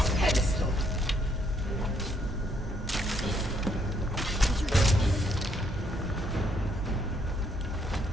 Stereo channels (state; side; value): normal; both; correlation 0.71